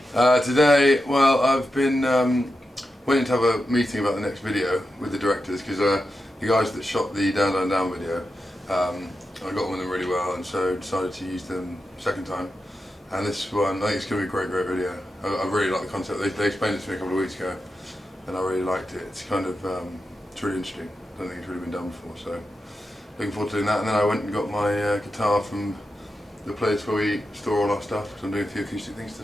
Today, well, I've been waiting to have a meeting about the next video with the directors because the guys that shot the Down Down Down video, I got on with them really well and so decided to use them second time. And this one, I think it's going to be a great video. I really like the concept. They explained it to me a couple of weeks ago and I really liked it. It's kind of, it's really interesting. I don't think it's really been done before, so looking forward to doing that. And then I went and got my guitar from the place where we store all our stuff, because I'm doing a few acoustic things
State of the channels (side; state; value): both; normal; correlation 0.89